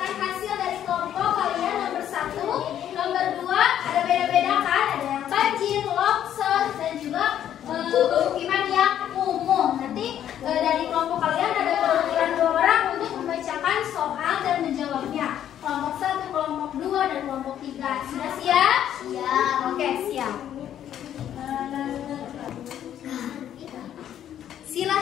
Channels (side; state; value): right; quieter; 10.5 dB